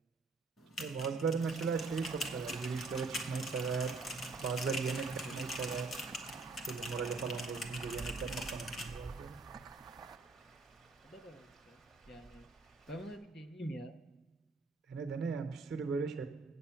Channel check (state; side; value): quieter; left; 3.8 dB